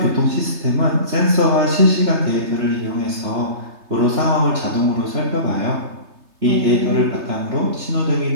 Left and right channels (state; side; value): late; left; 3.3 ms